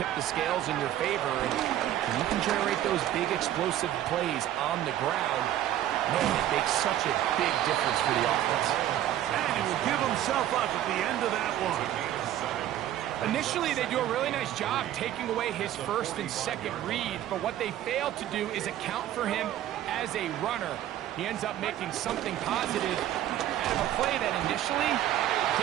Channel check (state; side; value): quieter; left; 12.3 dB